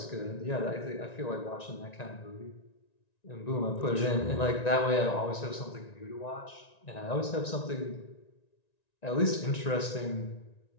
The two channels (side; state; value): right; late; 1.9 ms